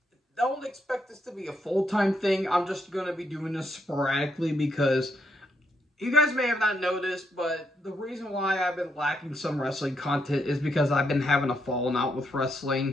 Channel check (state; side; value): normal; both; correlation 0.78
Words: don't expect this to be a full-time thing. I'm just going to be doing this sporadically because you guys may have not noticed, but the reason why I've been lacking some wrestling content is because I've been having a falling out with